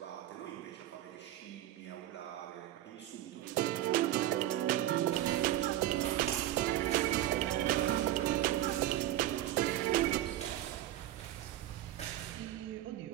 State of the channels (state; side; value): quieter; left; 13.6 dB